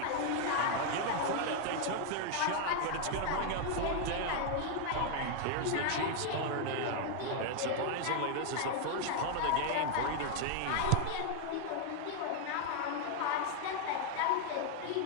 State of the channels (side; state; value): both; different; correlation 0.00